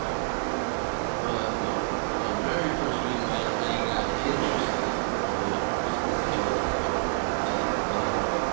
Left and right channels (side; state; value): left; silent; digital silence